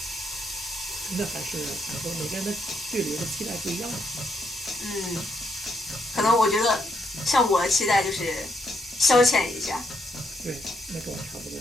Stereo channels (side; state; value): both; normal; correlation 0.76